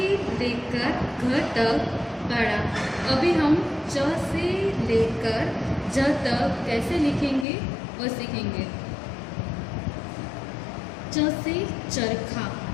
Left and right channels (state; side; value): drops out; right; at 7.5 s